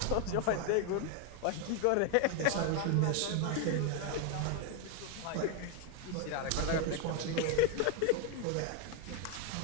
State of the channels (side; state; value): both; different; correlation 0.01